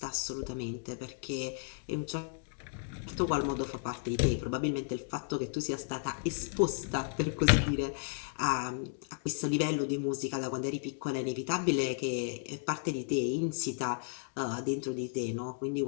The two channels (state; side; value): silent; right; 55 dB below the other